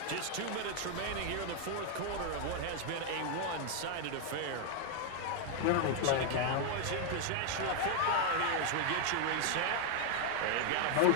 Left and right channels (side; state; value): both; different; correlation 0.00